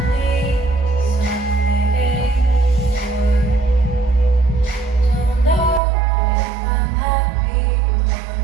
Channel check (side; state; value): left; drops out; at 5.8 s